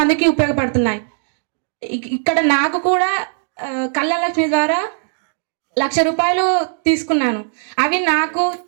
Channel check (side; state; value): left; silent; digital silence